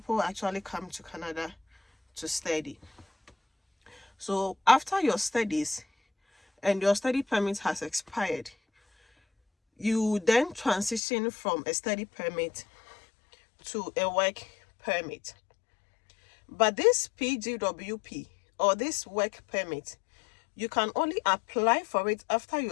actually come to Canada to study. So after your studies and your study permit has expired, you then transition from a study permit to a work permit. But this PGWP or this work permit, you can only apply for it after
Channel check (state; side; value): drops out; right; at 11.0 s